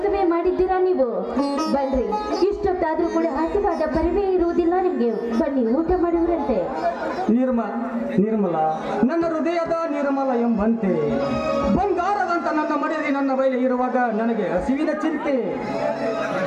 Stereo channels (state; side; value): identical; both; correlation 1.00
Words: ಮಾಡಿದ್ದೀರಾ ನೀವು. ಬನ್ರಿ, ಇಷ್ಟೊತ್ತಾದ್ರೂ ಕೂಡ ಹಸಿವಾದ ಬರವೇ ಇರುವುದಿಲ್ಲ ನಿಮ್ಗೆ. ಬನ್ನಿ, ಊಟ ಮಾಡುವರಂತೆ. ನಿರ್ಮಲ ನನ್ನ ಹೃದಯದ ನಿರ್ಮಲ ಎಂಬಂತೆ ಬಂಗಾರದಂತ ನನ್ನ ಮನೆಯಲ್ಲಿ ನನ್ನ ಬಯಲು ಇರುವಾಗ ನನಗೆ ಹಸಿವಿನ ಚಿಂತೆ.